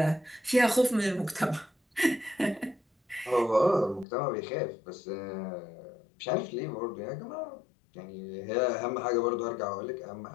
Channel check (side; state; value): right; drops out; at 4.0 s